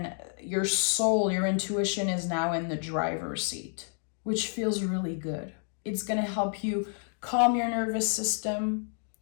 your soul, your intuition is now in the driver's seat, which feels really good. It's going to help you calm your nervous system.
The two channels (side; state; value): right; silent; 55 dB below the other